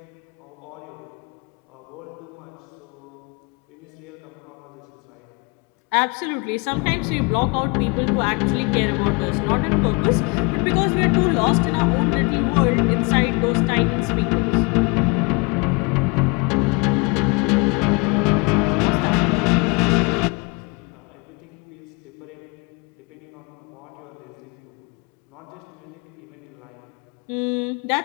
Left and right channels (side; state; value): right; quieter; 30.2 dB